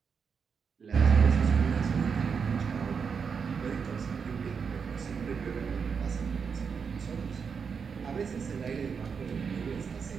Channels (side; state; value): left; quieter; 6.1 dB